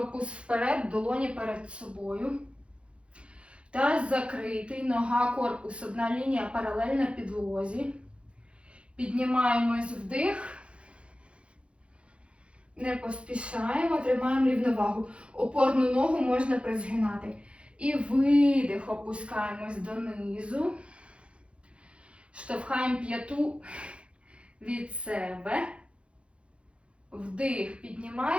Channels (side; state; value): left; late; 0.059 ms